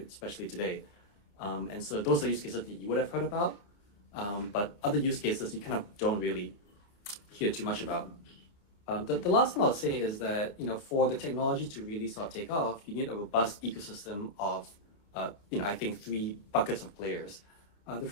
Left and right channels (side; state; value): right; late; 29 ms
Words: Especially today. And so those are use cases that you would have heard about, but other use cases you kind of don't really hear too much about. The last thing I'll say is that, for the technology to really sort of take off, you need a robust ecosystem of, I think 3 buckets of players. The